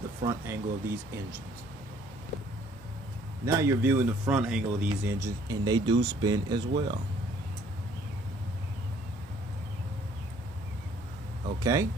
front angle of these engines. Now you're viewing the front angle of these engines, and they do spin as well. Okay.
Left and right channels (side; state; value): both; normal; correlation 0.60